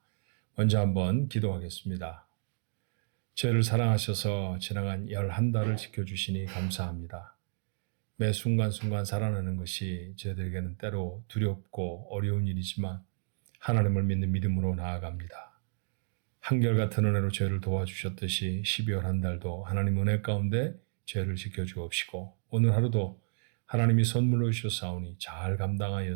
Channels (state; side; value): silent; left; digital silence